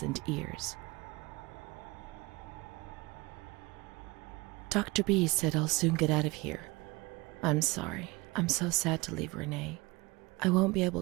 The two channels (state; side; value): quieter; left; 23.6 dB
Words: and ears. Dr. B said I'll soon get out of here. I'm sorry. I'm so sad to leave Renee. I won't be able